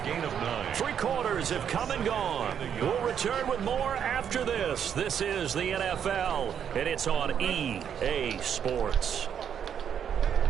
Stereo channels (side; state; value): left; quieter; 8.4 dB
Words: gain of 9. 3 quarters have come and gone. We'll return with more after this. This is the NFL, and it's on EA Sports.